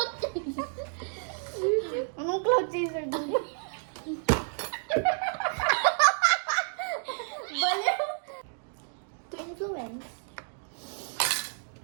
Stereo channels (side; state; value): left; silent; 58 dB below the other